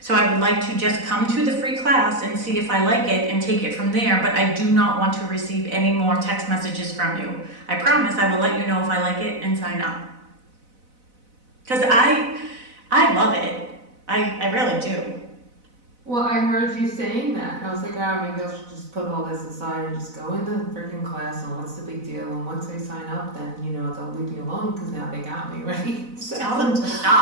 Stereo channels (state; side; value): late; left; 4.0 ms